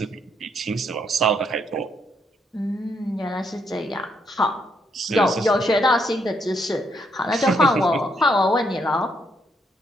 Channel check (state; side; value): normal; both; correlation 0.75